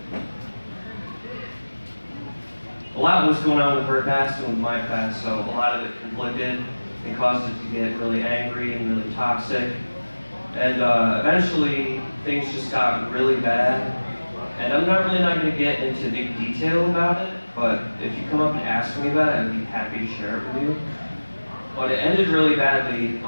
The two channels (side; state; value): both; inverted; correlation -1.00